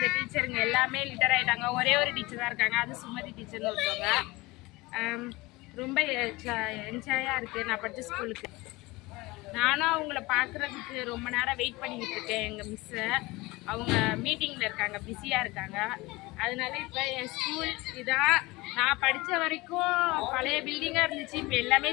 டீச்சருங்க எல்லாமே லிட்டர் ஆகிட்டாங்க. ஒரே ஒரு டீச்சர் தான் இருக்காங்க, அது சுமதி டீச்சர்னு ஒருத்தவங்க. ரொம்ப என்ஜாயாக இருக்குது நான் படித்த ஸ்கூலுக்கு. நானும் அவங்கள பார்க்குறதுக்கு ரொம்ப நேரம் வெயிட் பண்ணிக்கிட்டு இருக்கேன். எங்கள் மிஸ்ஸை, அவங்க மீட்டிங்கில் இருக்காங்க, பிஸியாக இருக்காங்க. அதனால இப்போ என் ஸ்கூல் இதான். நான் படித்த வரைக்கும் பழைய பில்டிங்காக இருந்துச்சு, இப்போ எல்லாமே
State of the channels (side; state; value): right; quieter; 22.0 dB